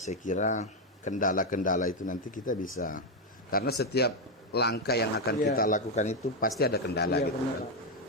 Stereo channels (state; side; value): normal; both; correlation 0.05